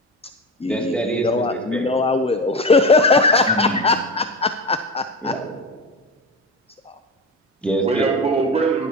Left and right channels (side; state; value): both; normal; correlation 0.23